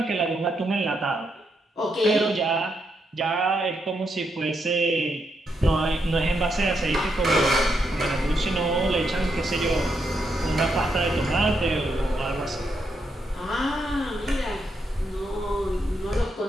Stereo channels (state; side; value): normal; both; correlation 0.80